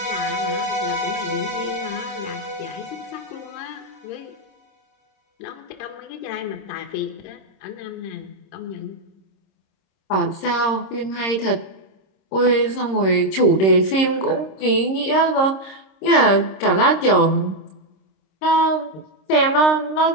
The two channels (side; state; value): right; late; 26 ms